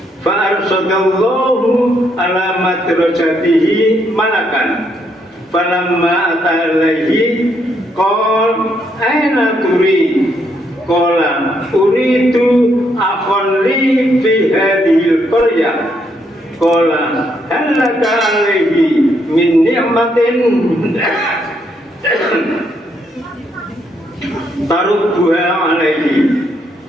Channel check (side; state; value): both; normal; correlation 0.75